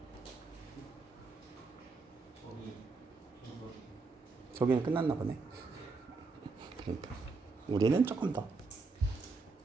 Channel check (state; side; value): quieter; left; 4.1 dB